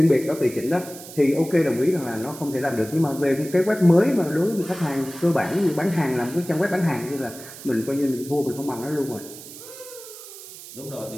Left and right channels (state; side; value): noise; right; hiss, 15 dB below the sound